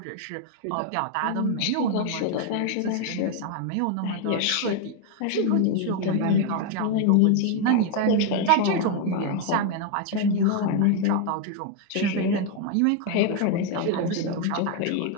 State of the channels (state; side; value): different; both; correlation 0.01